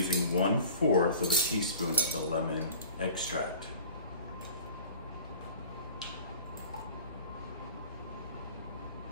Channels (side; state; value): both; inverted; correlation -0.42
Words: 1/4 of a teaspoon of the lemon extract.